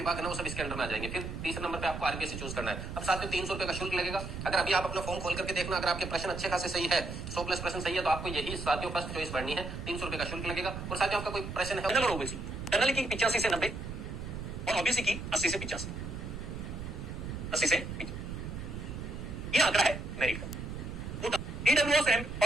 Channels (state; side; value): noise; right; rumble, 7 dB below the sound